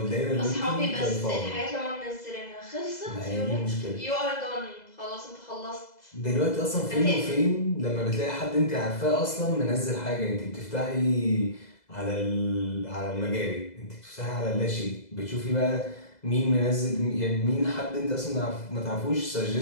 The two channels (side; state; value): right; late; 2.0 ms